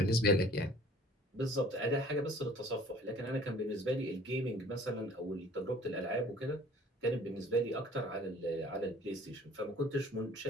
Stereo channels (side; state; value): both; normal; correlation 0.52